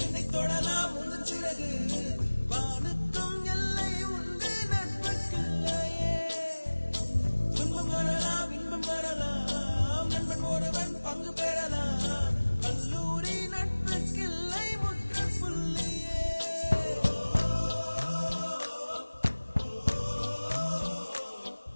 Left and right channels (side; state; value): both; inverted; correlation -1.00